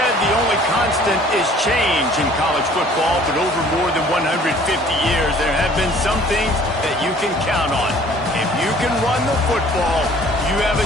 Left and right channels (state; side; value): normal; both; correlation 0.53